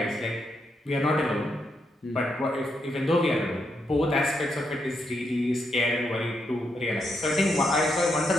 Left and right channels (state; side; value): normal; both; correlation 0.80